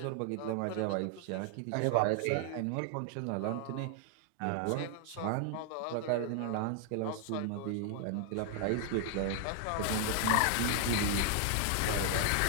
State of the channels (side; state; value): both; different; correlation 0.00